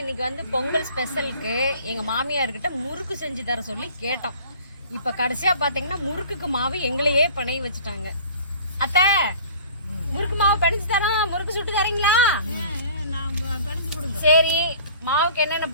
இன்னைக்கு வந்து பொங்கல் ஸ்பெஷலுக்கு எங்கள் மாமியார்கிட்ட முறுக்கு செஞ்சு தர சொல்லி கேட்டோம். இப்போ கடைசியாக பார்த்தீங்கன்னா முறுக்குக்கு மாவு எங்களையே பணைய வச்சுட்டாங்க. அத்தை, முறுக்கு மாவு பிணைச்சு தரோம், முறுக்கு சுட்டு தரீங்களா? சரி, மாவுக்கு என்னென்ன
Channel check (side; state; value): both; inverted; correlation -0.47